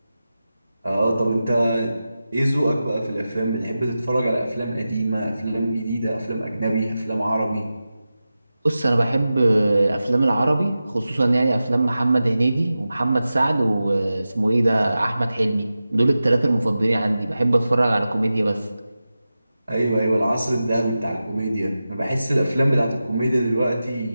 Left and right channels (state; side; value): inverted; both; correlation -0.94